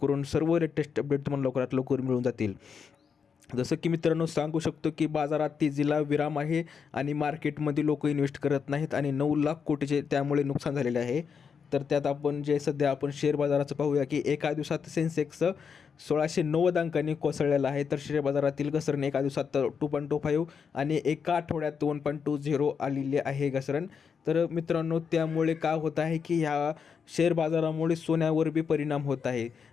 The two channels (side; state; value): right; quieter; 6.4 dB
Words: सर्व लेटेस्ट अपडेट तुम्हाला लवकरात लवकर मिळून जातील. जसं की मित्रांनो, सांगू शकतो की बाजारात तेजीला विराम आहे आणि मार्केटमध्ये लोक इन्व्हेस्ट करत नाहीत आणि 9 लाख कोटीचे त्यामुळे नुकसान झालेले आहे. तर त्यात आपण जे सध्या आपण शेअर बाजाराचं पाहूया की एका दिवसात सेन्सेक्स 1690 अंकांनी कोसळलेला आहे. तर शेअर बाजारातील घसरण एका दिवसात 2.25 आणि एका आठवड्यात 1.20 आलेली आहे घसरण. तर मित्रांनो, त्यामुळे काय होत आहे की ह्या शेअर बाजारामुळे सोन्यावर बी परिणाम होत आहे